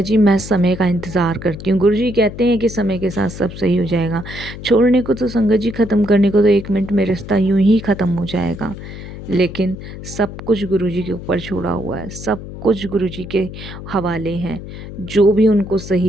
जी मैं समय का इंतज़ार करती हूँ। गुरुजी कहते हैं कि समय के साथ सब सही हो जाएगा। छोड़ने को तो संगत जी, ख़त्म करने को तो 1 मिनट में रिश्ता यूँ ही ख़त्म हो जाएगा। लेकिन सब कुछ गुरुजी के ऊपर छोड़ा हुआ है, सब कुछ गुरुजी के हवाले हैं। जो भी उनको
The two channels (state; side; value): noise; left; hum, 12 dB below the sound